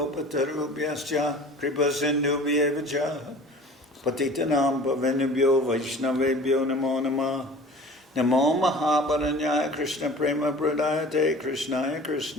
Kripasindubhyevacha Patitanam Pavenubhyo Vaishnavebhyo Namo Namah Namo Mahabaranyaya Krishna Prema Pradayate Krishnaya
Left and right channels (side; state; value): both; normal; correlation 0.43